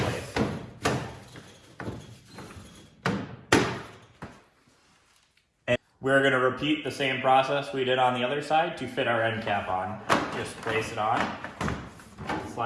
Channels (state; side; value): identical; both; correlation 1.00